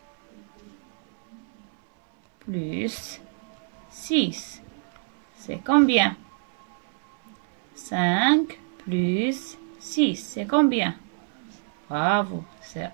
plus 6. C'est combien? 5 plus 6. C'est combien? Bravo, c'est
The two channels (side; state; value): left; silent; 60 dB below the other